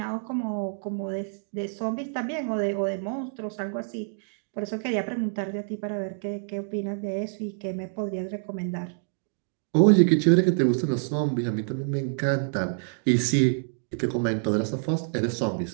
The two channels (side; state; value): left; silent; digital silence